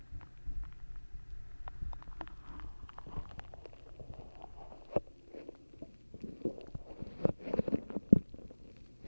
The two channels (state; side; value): inverted; both; correlation -1.00